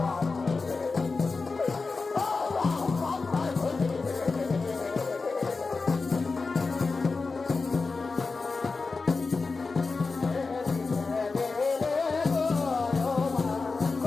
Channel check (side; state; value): right; quieter; 4.1 dB